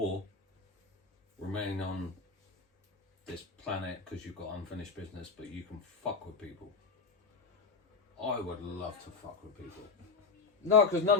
remain on this planet because you've got unfinished business but you can fuck with people, I would love to fuck with people. No, because none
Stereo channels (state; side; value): quieter; right; 4.6 dB